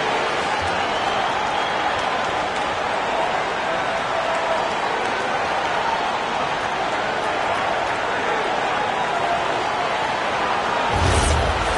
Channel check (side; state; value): both; identical; correlation 1.00